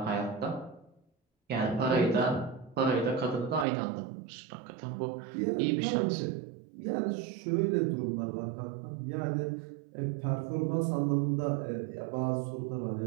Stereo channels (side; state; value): left; drops out; at 3.7 s